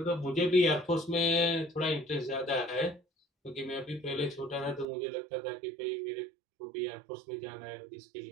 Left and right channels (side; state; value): left; drops out; at 4.9 s